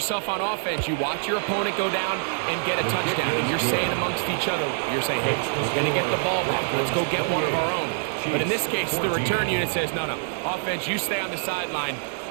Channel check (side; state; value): left; silent; digital silence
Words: on offense. You watch your opponent go down and get a touchdown. And you're saying amongst each other, you're saying, hey, we're going to get the ball back. Let's go get one of our own. But in this case, the return unit says, no, offense, you stay on the sideline.